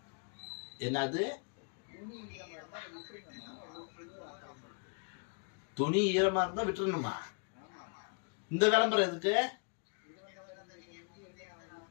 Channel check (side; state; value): right; quieter; 39.6 dB